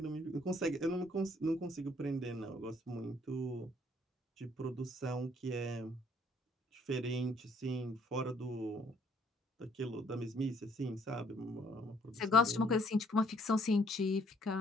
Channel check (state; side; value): normal; both; correlation 0.64